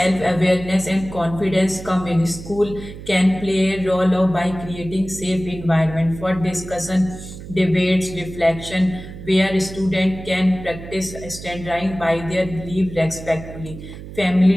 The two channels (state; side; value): noise; right; hum, 13 dB below the sound